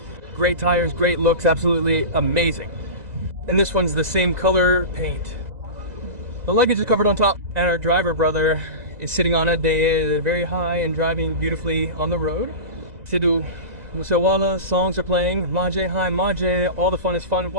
Great tires, great looks, absolutely amazing. And this one's the same color paint. The luggage is covered on top, and our driver brother is sitting on it. They are very high and driving beautifully on the road. Sidhu Musewala, songs are playing, Maje, hi Maje, all the fun is fun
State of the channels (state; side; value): late; left; 1.9 ms